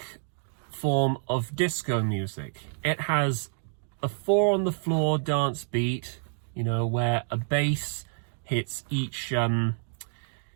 form of disco music. It has a 4-on-the-floor dance beat, where a bass hits each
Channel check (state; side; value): silent; left; digital silence